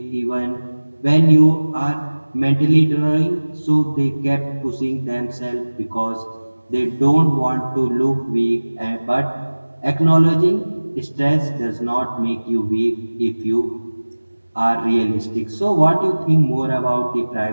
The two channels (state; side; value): inverted; both; correlation -1.00